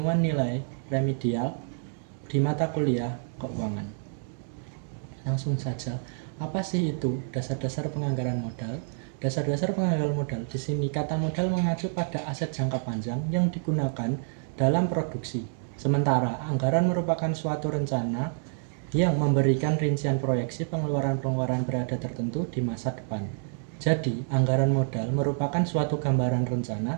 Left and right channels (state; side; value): silent; left; digital silence